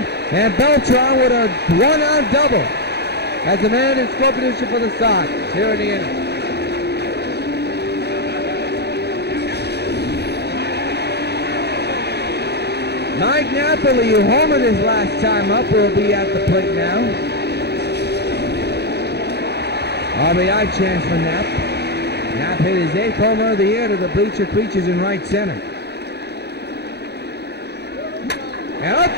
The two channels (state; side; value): late; right; 0.48 ms